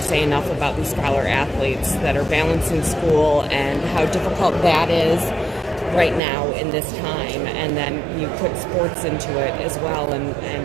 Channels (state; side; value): drops out; left; at 6.2 s